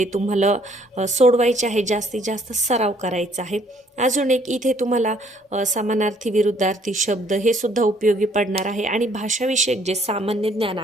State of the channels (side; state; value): both; normal; correlation 0.63